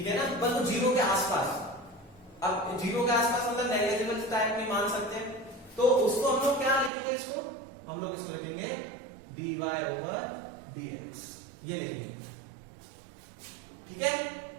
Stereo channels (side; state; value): left; drops out; at 6.9 s